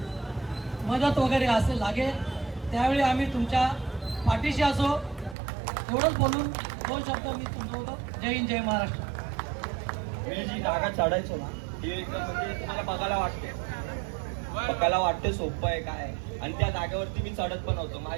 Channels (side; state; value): left; drops out; at 5.4 s